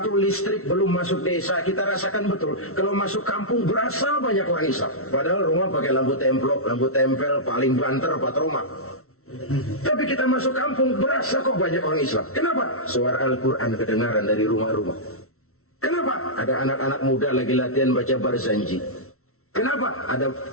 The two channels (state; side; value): late; right; 0.63 ms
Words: listrik belum masuk desa, kita rasakan betul. Kalau masuk kampung berasa banyak orang Islam. Padahal rumah pakai lampu templok, lampu tempel, paling banter, patroma. Tapi kita masuk kampung berasa kok banyak orang Islam. Kenapa? Suara Al-Quran kedengaran dari rumah-rumah. Kenapa? Ada anak-anak muda lagi latihan baca barzanji. Kenapa? Ada